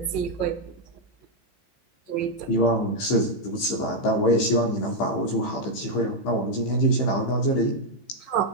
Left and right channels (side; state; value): right; late; 15 ms